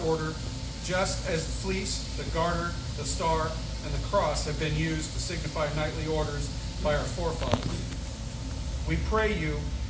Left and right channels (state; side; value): identical; both; correlation 1.00